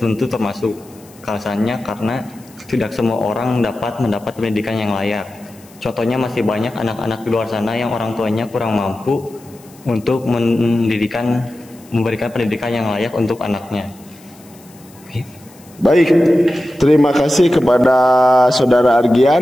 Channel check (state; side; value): noise; left; hiss, 26 dB below the sound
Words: termasuk. Alasannya karena tidak semua orang dapat mendapat pendidikan yang layak. Contohnya masih banyak anak-anak di luar sana yang orang tuanya kurang mampu untuk memberikan pendidikan yang layak untuk anaknya. Baik, terima kasih kepada Saudara